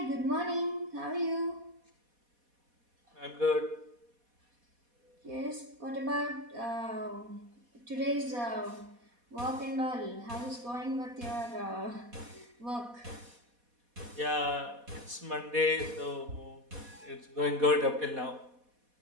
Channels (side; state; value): left; late; 4.1 ms